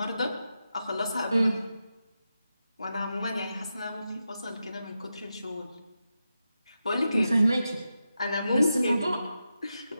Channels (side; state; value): both; inverted; correlation -0.89